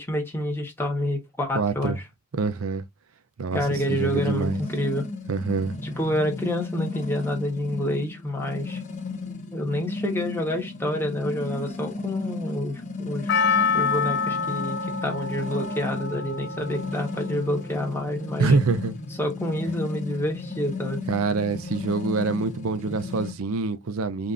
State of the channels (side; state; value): both; normal; correlation 0.48